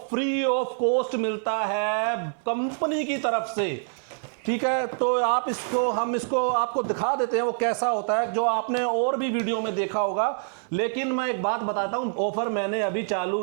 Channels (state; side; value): silent; left; 61 dB below the other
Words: फ्री ऑफ कॉस्ट मिलता है कंपनी की तरफ से। ठीक है। तो हम इसको आपको दिखा देते हैं वो कैसा होता है, जो आपने और भी वीडियो में देखा होगा। लेकिन मैं एक बात बताता हूं, ऑफर मैंने अभी